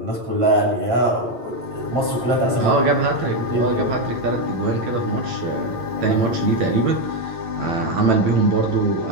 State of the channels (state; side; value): late; left; 9.0 ms